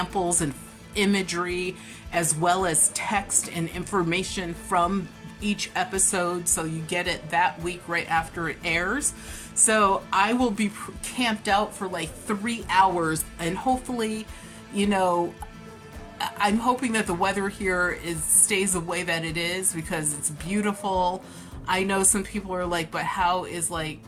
and imagery, as well as text and information from each episode, so you get it that week right after it airs. So I will be camped out for like 3 hours, and hopefully, I'm hoping that the weather here stays the way that it is, because it's beautiful. I know some people are like, but how is like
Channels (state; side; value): identical; both; correlation 1.00